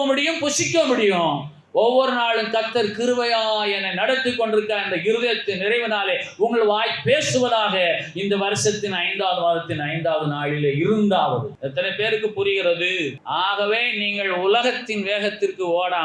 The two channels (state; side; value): identical; both; correlation 1.00